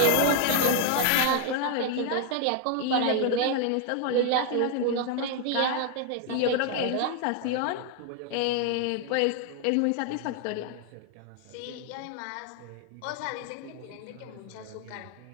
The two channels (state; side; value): different; both; correlation 0.00